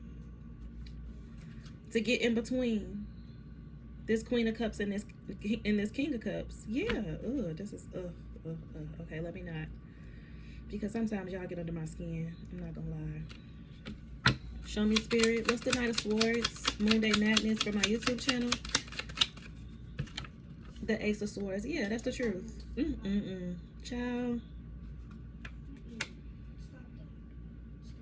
to get in between this Queen of Cups and this King of Cups. Yeah, this is okay, let me not, because sometimes y'all get under my skin. I'm not gonna lie. Show me, Spirit. What's the Knight of Swords? Moon Day Madness for my YouTube channel. The Ace of Swords. Yeah, that's the truth. Ciao.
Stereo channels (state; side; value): identical; both; correlation 1.00